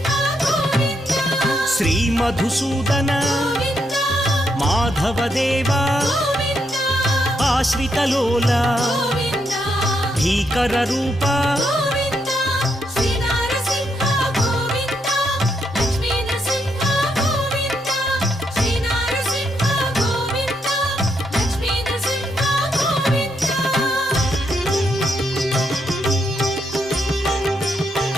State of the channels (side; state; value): both; normal; correlation 0.78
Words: శ్రీ మధుసూదన మాధవదేవా ఆశ్రితలోల భీకర రూప